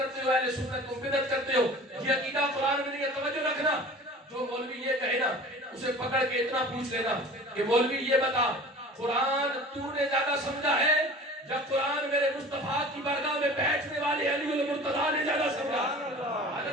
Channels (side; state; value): both; normal; correlation 0.41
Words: ہو، اہل سنت تم بدعت کرتے ہو، یہ عقیدہ قرآن میں نہیں ہے. توجہ رکھنا. جو مولوی یہ کہے نا اسے پکڑ کے اتنا پوچھ لینا کہ مولوی یہ بتا قرآن تو نے زیادہ سمجھا ہے یا قرآن میرے مصطفیٰ کی بارگاہ میں بیٹھنے والے علی المرتضیٰ نے زیادہ سمجھا،